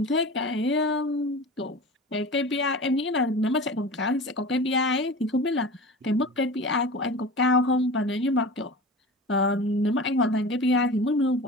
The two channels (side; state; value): both; normal; correlation 0.34